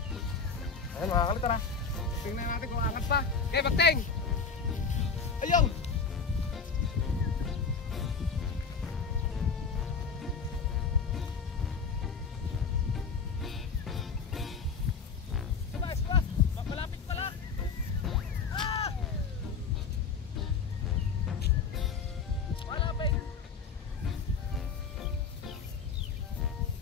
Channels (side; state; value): right; quieter; 5.5 dB